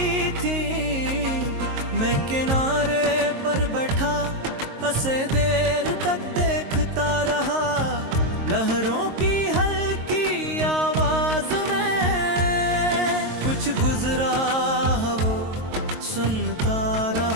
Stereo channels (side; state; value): left; late; 22 ms